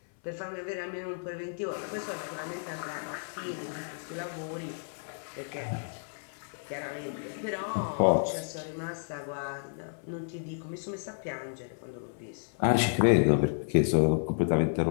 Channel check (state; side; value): silent; right; 57 dB below the other